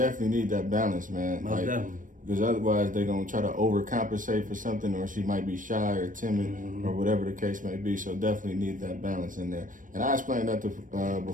need that balance, man. Most definitely. Because otherwise they're going to try to overcompensate for something, or she might be shy or timid, mm-hmm. or whatever the case may be. So definitely need that balance in there. And I explained that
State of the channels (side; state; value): left; late; 0.38 ms